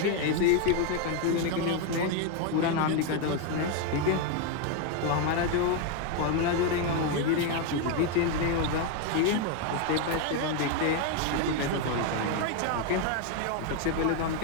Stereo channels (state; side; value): different; both; correlation 0.01